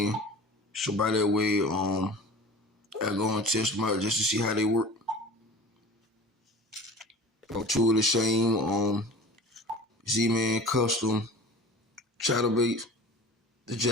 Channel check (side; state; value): both; normal; correlation 0.40